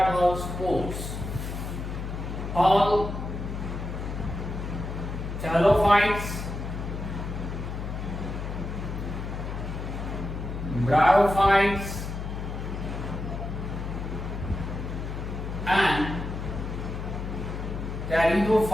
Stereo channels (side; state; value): left; noise; hum, 5 dB below the sound